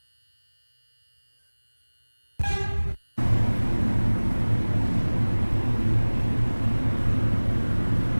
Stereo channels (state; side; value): inverted; both; correlation -1.00